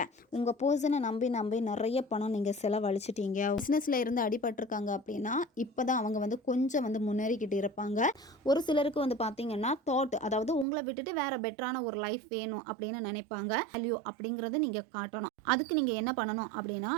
உங்கள் பர்சனை நம்பி நிறைய பணம் நீங்கள் செலவழிச்சிட்டீங்க. பிஸ்னஸில் இருந்து அடிபட்டிருக்காங்க அப்படின்னா இப்போ தான் அவங்க கொஞ்சம் முன்னேறிக்கிட்டு இருப்பாங்க. ஒரு சிலருக்கு பார்த்தீங்கன்னா தாட், அதாவது உங்களை விட்டுட்டு வேற பெட்டரான ஒரு லைஃப் வேணும் அப்படின்னு நினைப்பாங்க. வேல்யூ அப்படிங்கிறது நீங்கள் காட்டணும். அதுக்கு நீங்கள் என்ன பண்ணணும் அப்படின்னா,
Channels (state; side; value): drops out; left; at 10.7 s